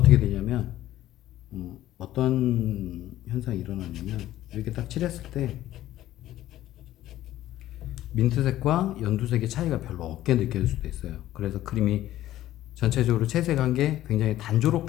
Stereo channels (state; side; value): quieter; right; 14.0 dB